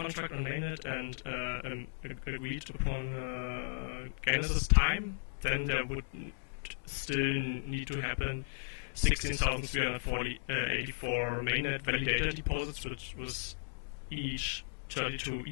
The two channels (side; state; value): right; silent; digital silence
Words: on mainnet and agreed upon genesis time, then there would still need to happen 16,384 mainnet validator deposits, which was each 32